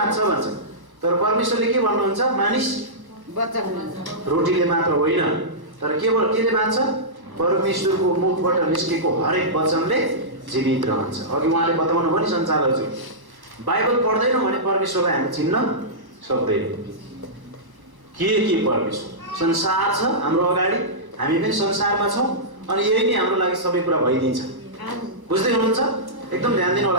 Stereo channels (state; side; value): late; left; 1.1 ms